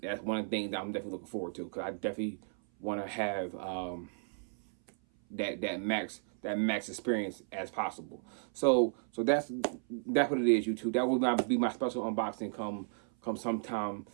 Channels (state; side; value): silent; left; 55 dB below the other